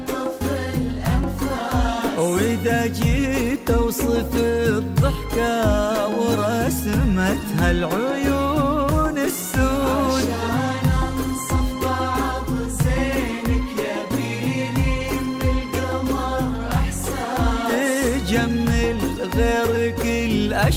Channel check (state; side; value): identical; both; correlation 1.00